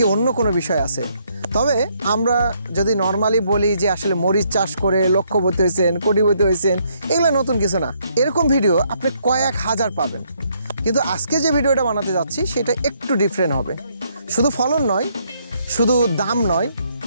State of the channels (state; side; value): inverted; both; correlation -0.71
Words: অন্য কোনো বিষয় আছে? তবে আমরা যদি নর্মালি বলি যে আসলে মরিচ চাষ করে লক্ষপতি হয়েছেন, কোটিপতি হয়েছেন, এগুলো নতুন কিছু না। এরকম ভিডিও আপনি কয়েক হাজার পাবেন, কিন্তু আজকে যে ভিডিওটা বানাতে যাচ্ছি সেটা একটু ডিফারেন্ট হবে। শুধু ফলন নয়, শুধু দাম নয়,